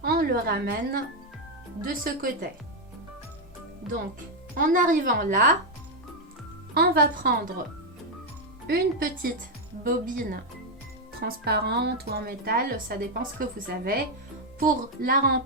on le ramène de ce côté. Donc, en arrivant là, on va prendre une petite bobine transparente ou en métal, ça dépend ce que vous avez, pour la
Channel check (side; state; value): both; normal; correlation 0.03